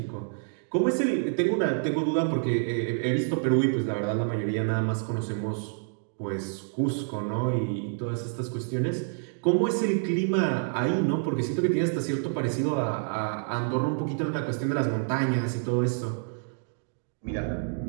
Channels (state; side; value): silent; left; digital silence